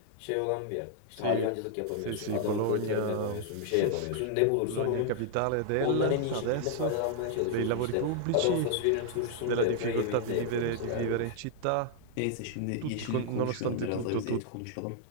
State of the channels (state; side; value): different; both; correlation -0.01